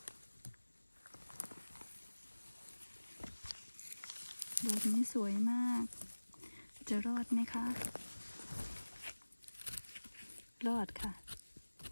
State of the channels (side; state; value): both; inverted; correlation -1.00